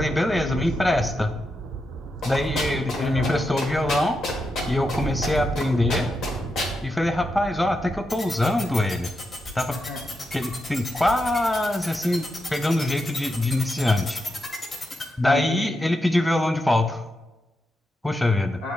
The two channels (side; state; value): both; normal; correlation 0.86